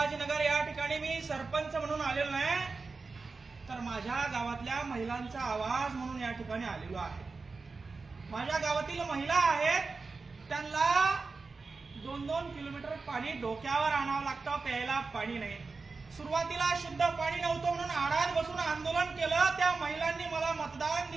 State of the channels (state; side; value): quieter; left; 4.2 dB